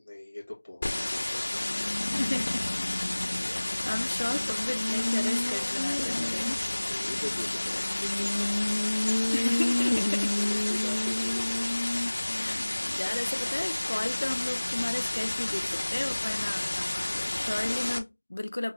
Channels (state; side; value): inverted; both; correlation -1.00